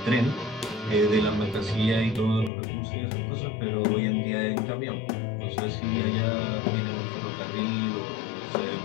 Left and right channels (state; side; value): drops out; right; at 2.5 s